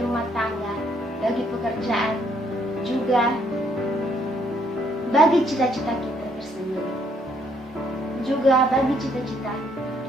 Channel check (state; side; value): normal; both; correlation 0.68